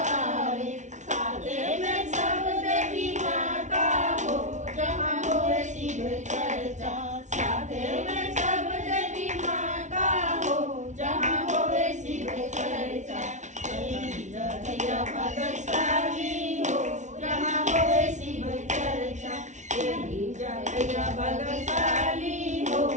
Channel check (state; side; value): late; left; 0.35 ms